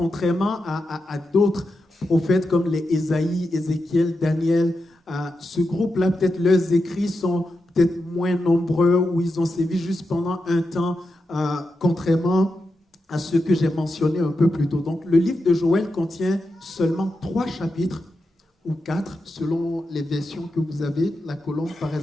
à d'autres prophètes comme les Ésaïe, Ézéchiel, Daniel, ce groupe-là, peut-être leurs écrits sont peut-être moins nombreux ou ils ont sévi juste pendant un temps, contrairement à ceux que j'ai mentionnés un peu plus tôt. Donc, le livre de Joël contient seulement 3 chapitres ou 4, selon les versions que vous avez. La colombe, par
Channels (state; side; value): normal; both; correlation 0.88